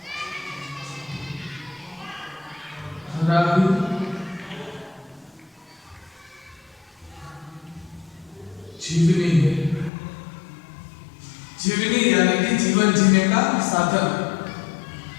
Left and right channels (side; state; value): right; drops out; at 9.9 s